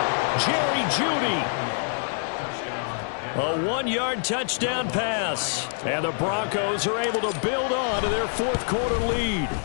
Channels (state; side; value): silent; right; 61 dB below the other